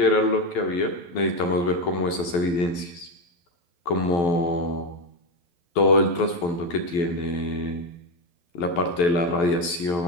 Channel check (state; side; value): late; right; 12 ms